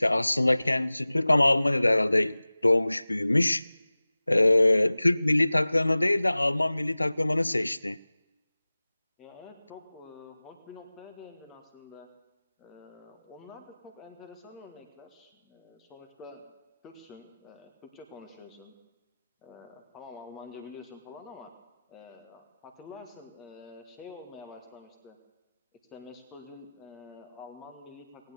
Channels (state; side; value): inverted; both; correlation -0.98